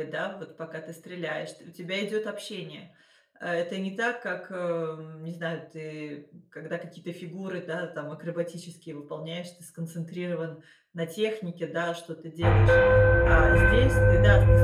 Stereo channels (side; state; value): both; identical; correlation 1.00